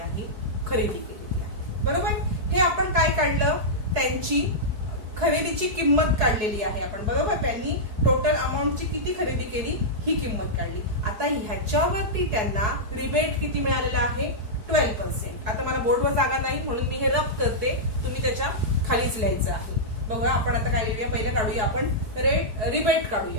खरेदी केलेली आहे, बरोबर. हे आपण काय काढलं? त्यांची खरेदीची किंमत काढलेली आहे आपण, बरोबर. त्यांनी टोटल अमाऊंटची किती खरेदी केली ही किंमत काढली. आता ह्याच्यावरती त्यांना रिबेट किती मिळालेला आहे? 12%. आता मला बोर्डवर जागा नाही म्हणून मी हे रफ करते, तुम्ही त्याच्या खालीच लिहायचं आहे. बघा आपण आता काय करूया, पहिलं काढूया आपण रिबेट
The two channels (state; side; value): late; left; 4.7 ms